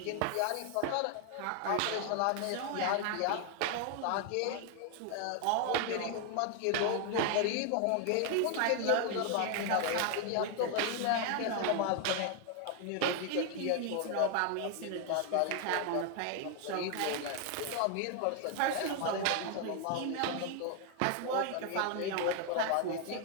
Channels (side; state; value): both; different; correlation 0.01